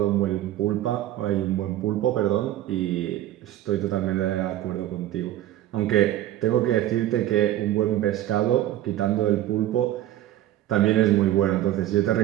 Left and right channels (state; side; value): quieter; left; 13.3 dB